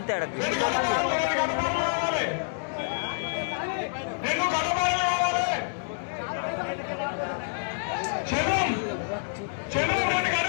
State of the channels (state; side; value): silent; right; 60 dB below the other